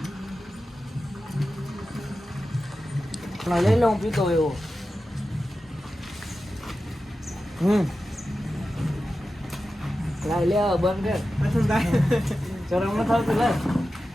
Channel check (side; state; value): both; normal; correlation 0.93